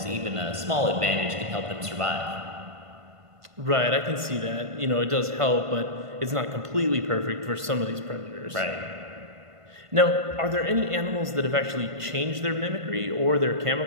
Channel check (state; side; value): late; left; 1.5 ms